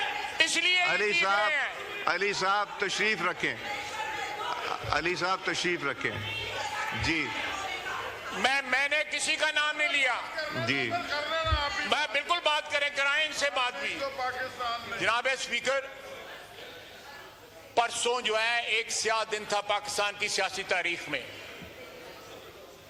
इसलिए अली साहब तशरीफ रखें, अली साहब तशरीफ रखें। जी मैंने किसी का नाम नहीं लिया। जी मैं बिल्कुल बात कराएं इनसे बात भी। जनाब स्पीकर, परसों जो है एक स्याह दिन था पाकिस्तान की सियासी तारीख में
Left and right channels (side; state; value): both; identical; correlation 1.00